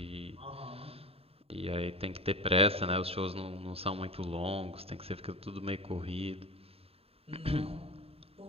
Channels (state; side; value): late; left; 0.28 ms